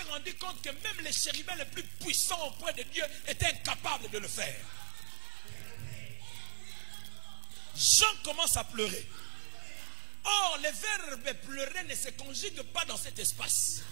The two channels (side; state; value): left; silent; 52 dB below the other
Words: rendu compte que même les chérubins les plus puissants auprès de Dieu étaient incapables de le faire. Jean commence à pleurer. Or, le verbe pleurer ne se conjugue pas dans cet espace.